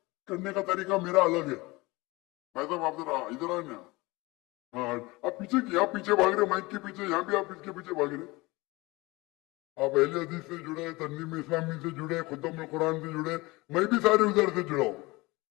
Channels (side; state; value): right; quieter; 22.7 dB